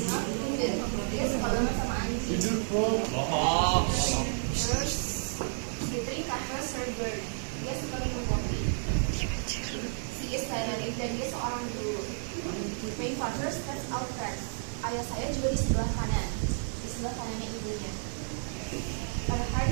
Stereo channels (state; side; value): silent; left; 57 dB below the other